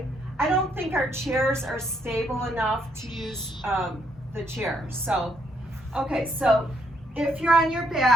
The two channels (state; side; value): normal; both; correlation 0.72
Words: I don't think our chairs are stable enough to use the chair. So, okay, so if you're on your